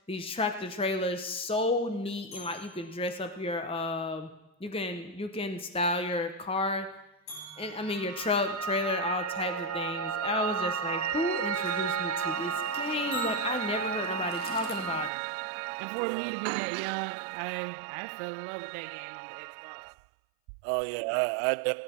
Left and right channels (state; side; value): drops out; left; at 15.1 s